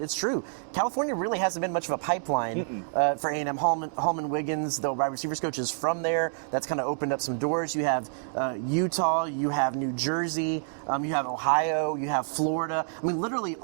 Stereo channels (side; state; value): left; silent; digital silence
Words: it's true. California really hasn't been much of a pipeline for A&M. Hallman Wiggins, the wide receivers coach, is from there. That's kind of opened up some doors. You have Utah, you have New Jersey, you have Ohio, you have Florida. Literally